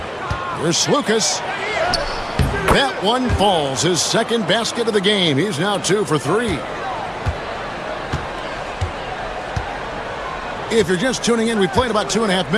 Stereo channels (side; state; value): both; identical; correlation 1.00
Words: Here's Lucas. That one falls. His second basket of the game. He's now 2 for 3. If you're just tuning in, we played about 2.5